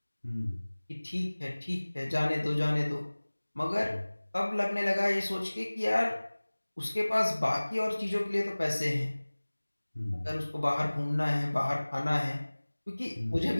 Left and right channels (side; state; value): both; inverted; correlation -1.00